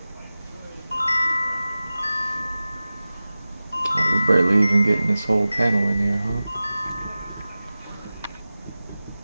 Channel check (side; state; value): both; inverted; correlation -0.96